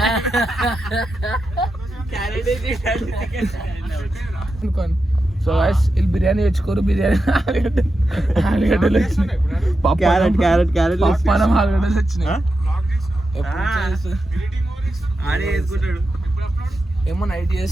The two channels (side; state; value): both; normal; correlation 0.89